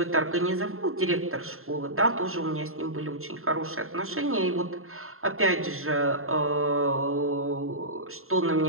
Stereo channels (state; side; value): late; left; 0.62 ms